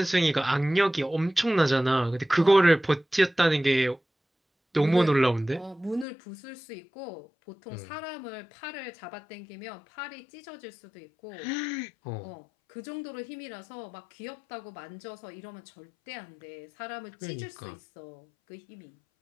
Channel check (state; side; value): drops out; right; at 6.1 s